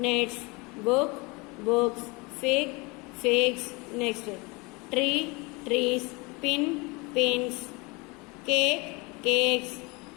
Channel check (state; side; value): quieter; right; 26.8 dB